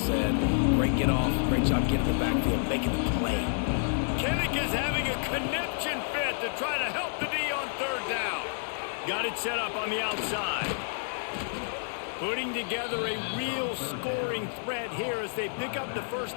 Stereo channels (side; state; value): right; silent; digital silence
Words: Great get off. Great job getting the backfield, making the play. Kinnick is having a conniption fit to try to help the D on 3rd down. Got it set up on the outside. Putting together a real scoring threat here as they pick up the